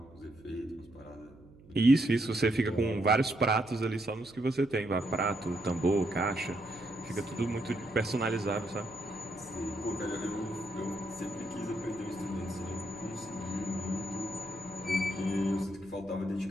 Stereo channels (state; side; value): noise; right; hum, 23 dB below the sound